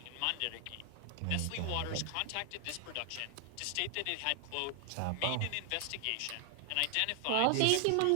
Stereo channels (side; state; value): both; different; correlation 0.00